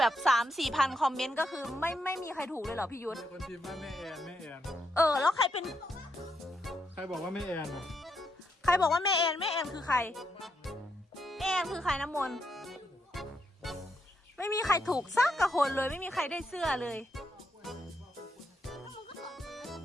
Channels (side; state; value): both; normal; correlation 0.80